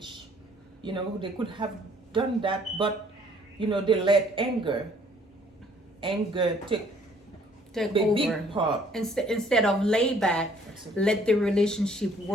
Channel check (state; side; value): normal; both; correlation 0.60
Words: You know, they could have done that, but you know, they let anger take Take the over. big part. Instead of lay back, Absolutely. let the relationship